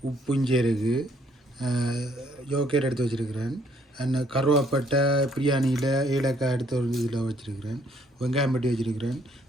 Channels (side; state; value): both; normal; correlation 0.66